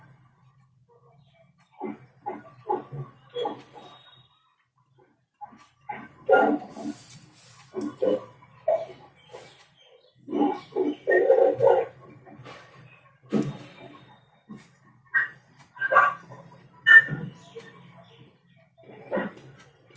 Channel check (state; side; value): identical; both; correlation 1.00